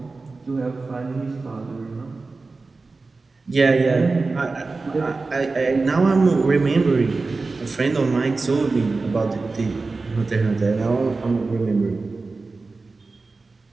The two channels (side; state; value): left; quieter; 3.8 dB